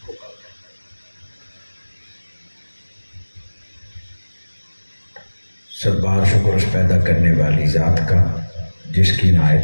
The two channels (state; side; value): inverted; both; correlation -1.00